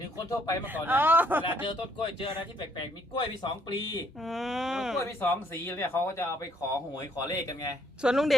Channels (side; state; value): both; normal; correlation 0.67